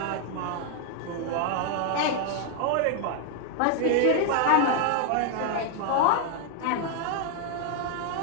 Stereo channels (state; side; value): different; both; correlation 0.00